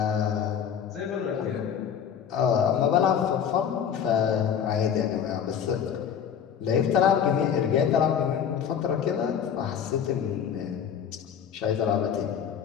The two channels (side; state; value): right; quieter; 8.2 dB